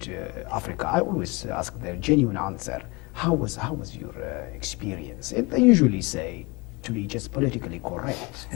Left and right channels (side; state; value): right; quieter; 26.9 dB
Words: Africa, I always ask their genuine answer. How was your experience? And they usually say, to be just politically correct,